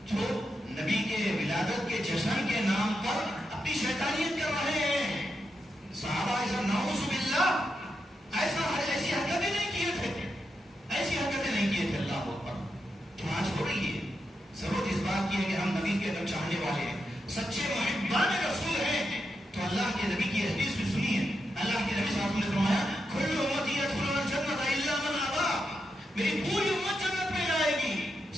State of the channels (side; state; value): both; normal; correlation 0.85